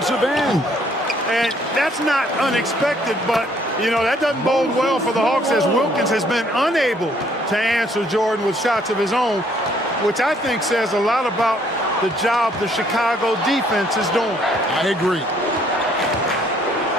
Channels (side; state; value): both; normal; correlation 0.64